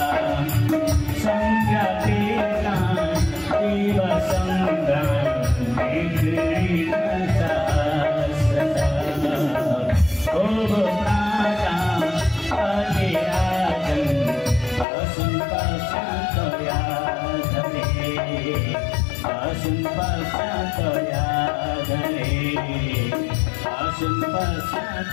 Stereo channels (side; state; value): right; drops out; at 14.9 s